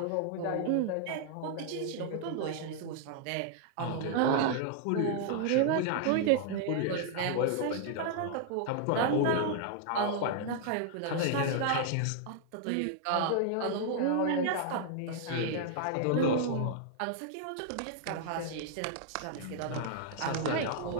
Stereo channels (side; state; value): both; different; correlation 0.00